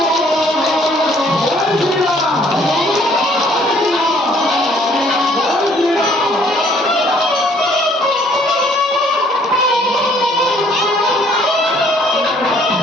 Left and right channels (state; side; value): normal; both; correlation 0.61